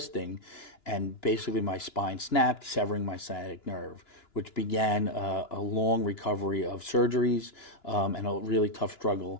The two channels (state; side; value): late; right; 2.9 ms